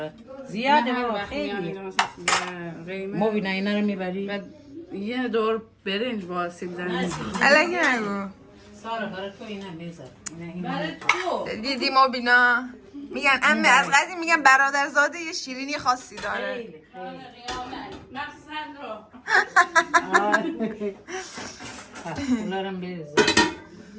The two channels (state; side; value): identical; both; correlation 1.00